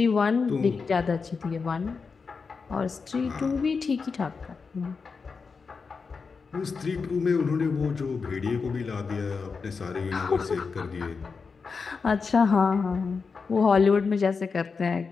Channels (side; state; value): right; quieter; 5.0 dB